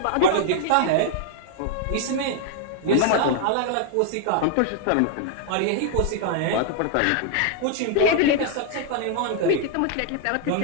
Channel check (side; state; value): both; different; correlation 0.00